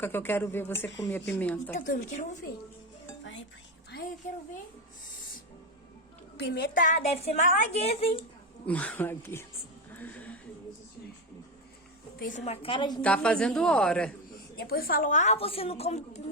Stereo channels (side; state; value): both; normal; correlation 0.14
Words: que eu quero ver você comer a pimenta. Eu também quero ver. Vai, eu quero ver. Pimenta deve ser malaguesa, hein? Malaguesa. Fez uma cara de Tá fazendo hora. Depois falou, você não come